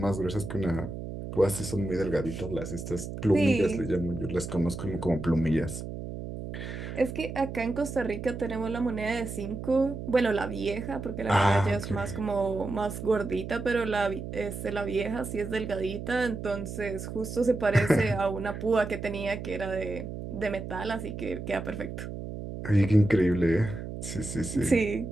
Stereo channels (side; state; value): right; noise; hum, 8 dB below the sound